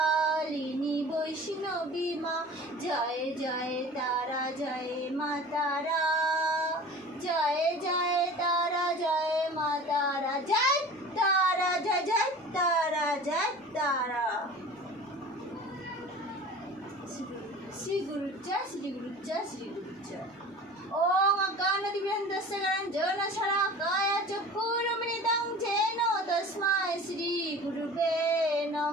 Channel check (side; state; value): both; normal; correlation 0.40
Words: বৈষ্ণবী মা, জয় জয় তারা জয় মা তারা, জয় জয় তারা জয় মা তারা, জয় তারা জয় জয় তারা জয় তারা। শ্রী গুরু জয়, শ্রী গুরু জয়, শ্রী গুরু জয়। ওং অজ্ঞানতিমিরন্ধস্য জ্ঞানাঞ্জনা শলাকায়া চক্ষুরুন্মিলিतं येन তস্मै শ্রী গুরুবে